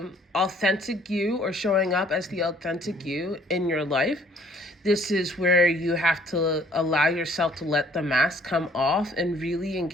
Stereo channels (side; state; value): both; normal; correlation 0.60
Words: authentic you or showing up as the authentic you in your life. This is where you have to allow yourself to let the mask come off and really